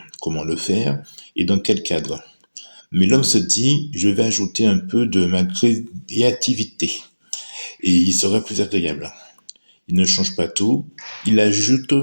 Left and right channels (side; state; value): both; inverted; correlation -1.00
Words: comment le faire et dans quel cadre. Mais l'homme se dit, je vais ajouter un peu de ma créativité et il serait plus agréable. Il ne change pas tout, il ajoute